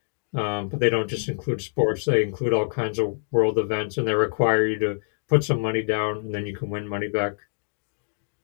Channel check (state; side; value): silent; right; digital silence